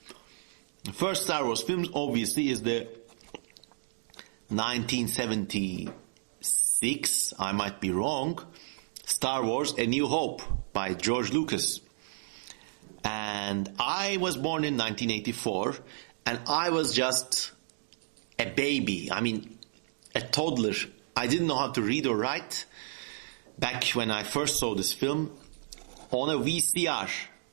The first Star Wars film obviously is the 1976, I might be wrong, Star Wars A New Hope by George Lucas. And I was born in 1984, and I was just a baby. I mean, a toddler. I didn't know how to read or write back when I first saw this film on a VCR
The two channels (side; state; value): left; silent; digital silence